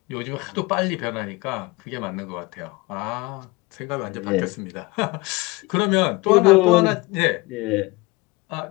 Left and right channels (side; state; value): right; quieter; 23.5 dB